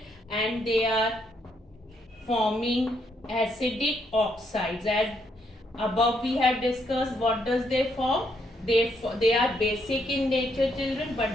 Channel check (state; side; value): normal; both; correlation 0.74